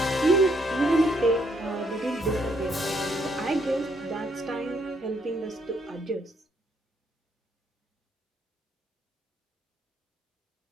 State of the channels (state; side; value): normal; both; correlation 0.72